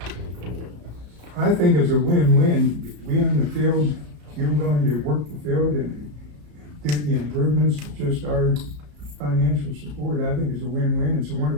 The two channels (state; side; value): late; left; 34 ms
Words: I think it's a win-win. We own the field, you're willing to work the field and do the improvements, just our financial support. I think it's a win-win. It's a